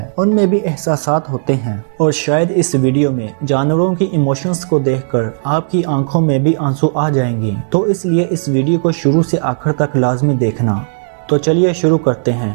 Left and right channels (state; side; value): silent; left; digital silence